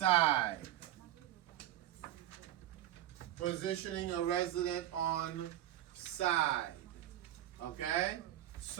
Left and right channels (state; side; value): quieter; left; 13.3 dB